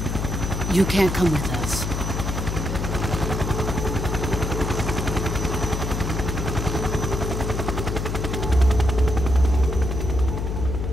you can't come with us.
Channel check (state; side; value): noise; left; hum, 2 dB below the sound